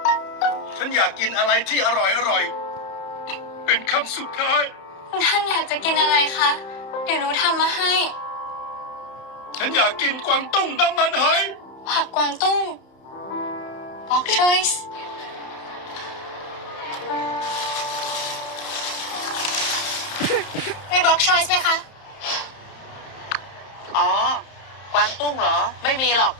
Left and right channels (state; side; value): late; right; 31 ms